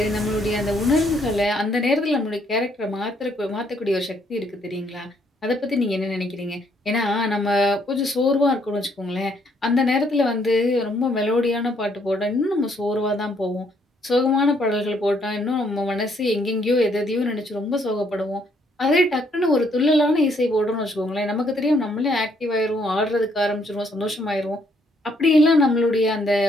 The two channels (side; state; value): both; normal; correlation 0.69